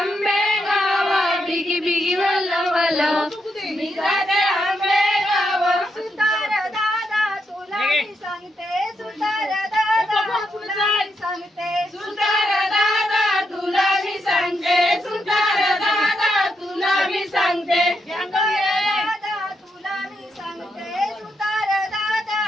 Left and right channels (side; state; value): both; normal; correlation 0.81